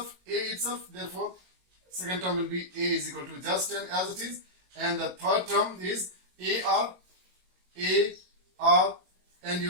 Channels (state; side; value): late; left; 22 ms